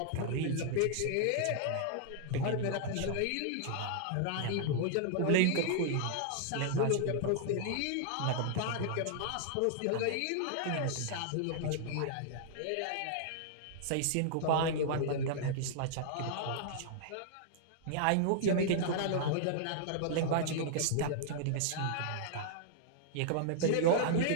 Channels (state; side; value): different; both; correlation -0.01